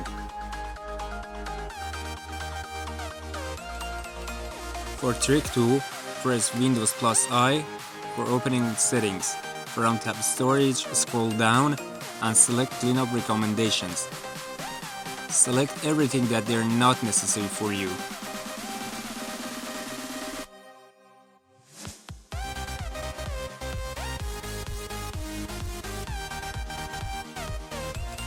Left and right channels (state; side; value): identical; both; correlation 1.00